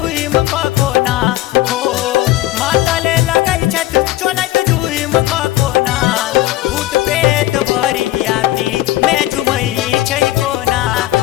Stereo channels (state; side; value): quieter; right; 15.7 dB